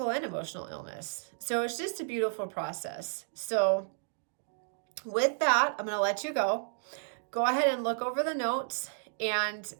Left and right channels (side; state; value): left; silent; digital silence